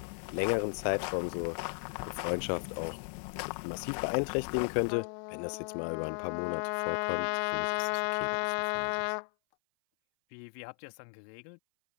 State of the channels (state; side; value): silent; right; 55 dB below the other